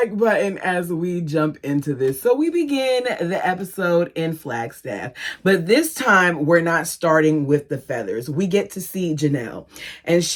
button as we jump into this. So we begin the episode in Flagstaff, but this time we're not starting with the feathers. We get to see Janelle, and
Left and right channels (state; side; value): identical; both; correlation 1.00